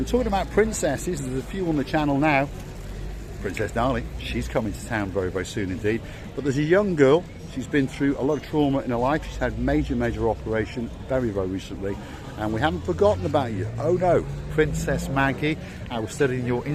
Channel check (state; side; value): identical; both; correlation 1.00